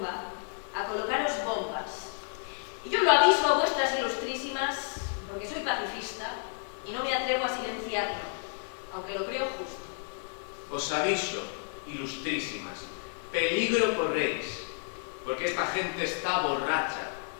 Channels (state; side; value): silent; right; 57 dB below the other